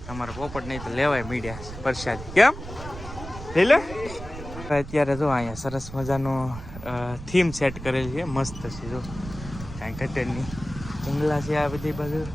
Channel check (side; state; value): right; noise; rumble, 12 dB below the sound